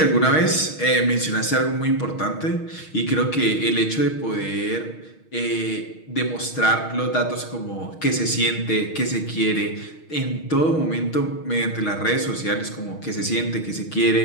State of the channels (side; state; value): right; late; 6.4 ms